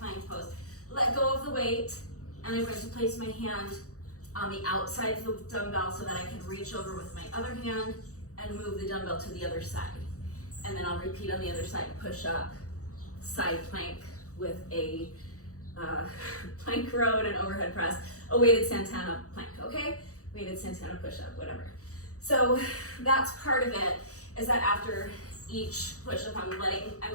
pose. Let go of the weight, and I'm going to place my hand on the outside of the dumbbell so that I can reach over with my other hand and move the dumbbell to the other side. And then I'll repeat on the other side, push up, side plank with a plank row and an overhead press, a weighted Santana plank, okay? Weighted Santana push-up, whatever. So that's part of it, is that after each push-up, I'm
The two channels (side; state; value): right; late; 0.65 ms